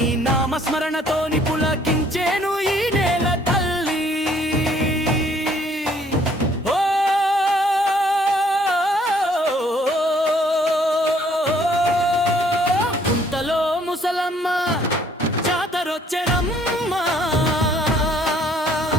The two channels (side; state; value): both; normal; correlation 0.62